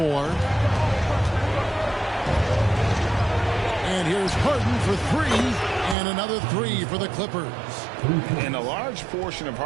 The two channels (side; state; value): left; drops out; at 6.0 s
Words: And here's Harden for 3. And another 3 for the Clippers. And a large portion of